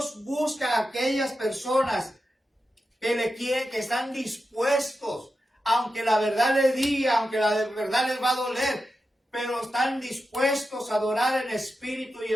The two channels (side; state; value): both; normal; correlation 0.90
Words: busca a aquellas personas que le quieren, que están dispuestos, aunque la verdad les diga, aunque la verdad les va a doler, pero están dispuestos a adorar en espíritu y